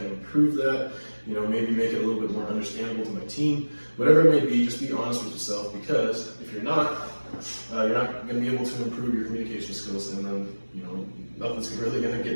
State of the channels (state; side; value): inverted; both; correlation -1.00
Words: improve that? Maybe make it a little bit more understandable to my team. Whatever it may be, just be honest with yourself, because if you're not going to be able to improve your communication skills, and then, nothing's really going to